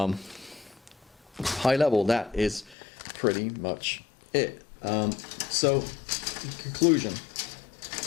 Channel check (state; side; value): drops out; right; at 2.8 s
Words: High level, that is pretty much it. So, in conclusion,